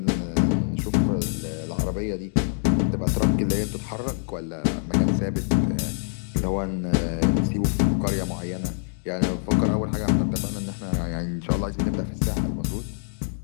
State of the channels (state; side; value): silent; right; digital silence